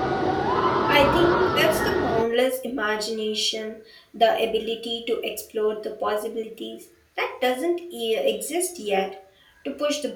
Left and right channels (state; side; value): identical; both; correlation 1.00